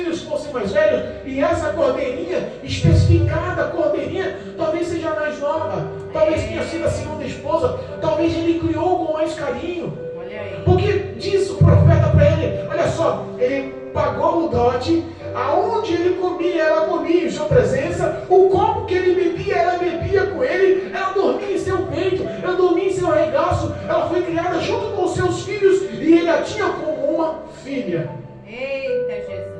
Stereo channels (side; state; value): both; identical; correlation 1.00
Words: fossem mais velhos e essa cordeirinha, especificada cordeirinha, talvez seja mais nova, talvez tenha sido a segunda esposa, talvez ele criou com mais carinho. Olha aí. Porque diz o profeta para ele: olha só, ele pagou o dote, aonde ele comia, ela comia em sua presença, o copo que ele bebia, ela bebia com ele, ela dormia em seu peito, ela dormia em seu regaço, ela foi criada criada junto com os seus filhos e ele a tinha como uma filha. Eita,